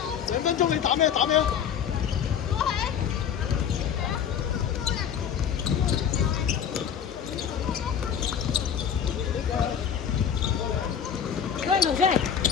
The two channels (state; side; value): quieter; right; 8.3 dB